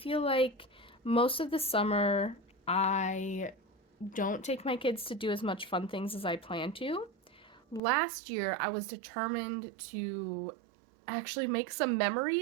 like most of the summer I don't take my kids to do as much fun things as I plan to. Last year, I was determined to actually make some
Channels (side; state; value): left; drops out; at 7.8 s